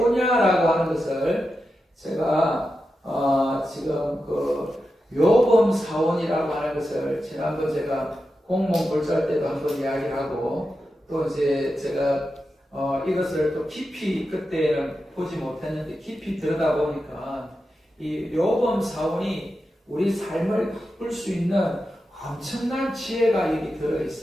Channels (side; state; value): both; normal; correlation 0.90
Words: 하는 것을 제가 지금 그 요범사원이라고 하는 것을 지난번 제가 공무원 불살 때도 한번 이야기하고 또 이제 제가 이것을 또 깊이 그때는 보지 못했는데 깊이 들여다보니까 이 요범사원이 우리 삶을 바꿀 수 있는 엄청난 지혜가 여기 들어